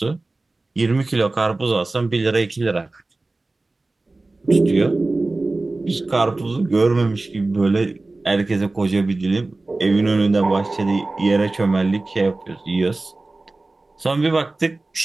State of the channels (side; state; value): left; quieter; 3.2 dB